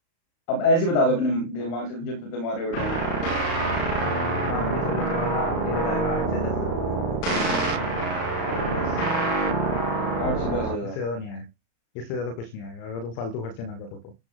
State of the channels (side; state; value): right; late; 35 ms